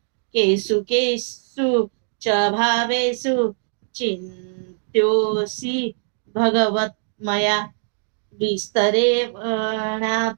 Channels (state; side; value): silent; left; digital silence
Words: केषु केषु च भावेषु चिन्त्योऽसि भगवत्मया विस्तरेणात्मनो